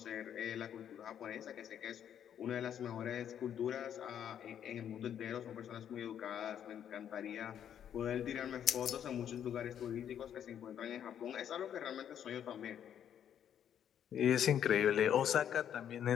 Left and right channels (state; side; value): quieter; right; 9.4 dB